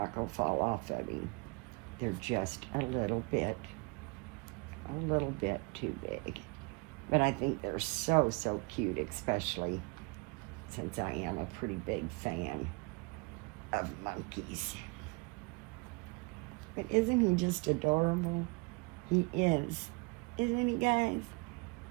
going to fall off of him. They're just a little bit too big. But I think they're so, so cute, especially since I am a pretty big fan of monkeys. But isn't he just adorable? He is. Isn't he, guys?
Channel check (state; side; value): quieter; left; 29.9 dB